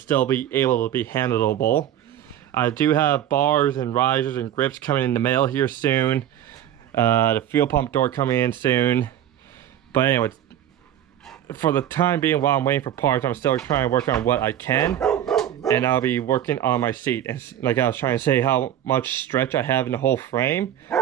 be able to be handleable. I do have bars and risers and grips coming in the mail here soon. The fuel pump door coming in soon. But anyway, for the time being, while I'm waiting for parts, I'm still trying to work on what I can. And I'll be working on my seat. And like I was trying to say, how much stretch I have in the whole frame.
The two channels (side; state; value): left; quieter; 11.2 dB